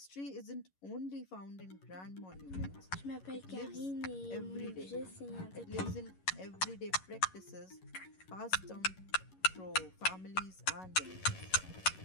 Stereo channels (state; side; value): late; right; 11 ms